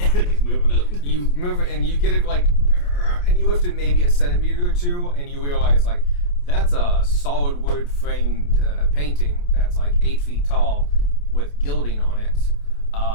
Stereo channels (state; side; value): late; right; 28 ms